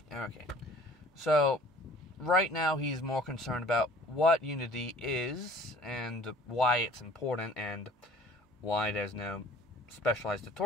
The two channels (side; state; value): both; normal; correlation 0.50